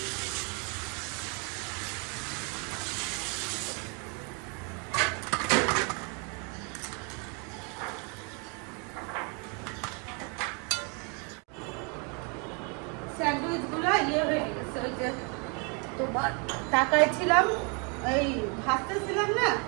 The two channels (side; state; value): left; quieter; 34.5 dB